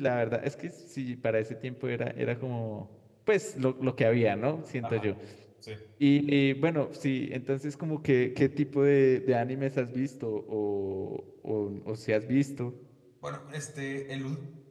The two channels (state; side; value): identical; both; correlation 1.00